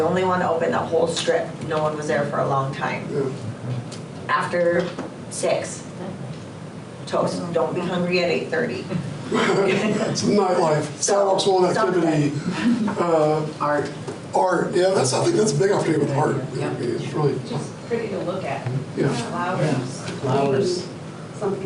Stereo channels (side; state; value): both; identical; correlation 1.00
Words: only one to open the whole strip. No one was there for a long time. Yeah. After 6, toast. Don't be hungry at 8:30. It's nightlife, sidewalks full of activity. Art, yeah, I think that's a big opportunity with art. Yeah. It's really, Just pretty to look at. yeah, Flowers.